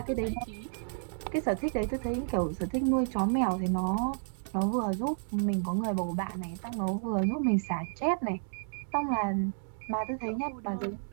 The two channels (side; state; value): left; silent; digital silence